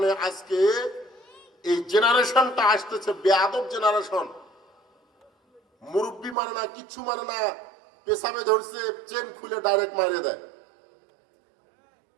আজকে এই জেনারেশনটা আসতেছে বেয়াদব জেনারেশন। মুরব্বী মানে না, কিচ্ছু মানে না, পেশাবে ধরছে, চেন খুলে ডাইরেক্ট মারিয়ে দেয়।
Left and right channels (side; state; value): left; drops out; at 6.4 s